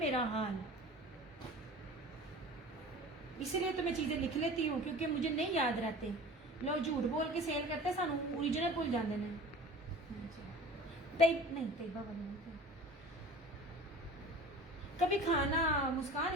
हाल। इसलिए तो मैं चीजें लिख लेती हूँ क्योंकि मुझे नहीं याद रहते। लोग झूठ बोल के सेल करते, सानू ओरिजिनल भूल जाते हैं। तैयबा वाले नहीं थे। कभी खाना मुस्कान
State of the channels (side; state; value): both; normal; correlation 0.40